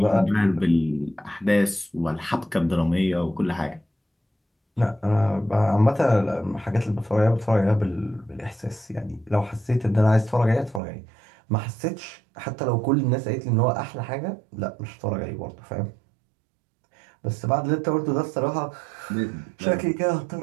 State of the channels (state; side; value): drops out; left; at 10.8 s